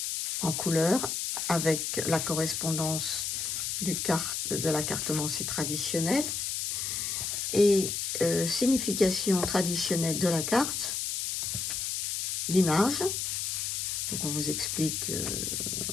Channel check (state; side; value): noise; left; hiss, 2 dB below the sound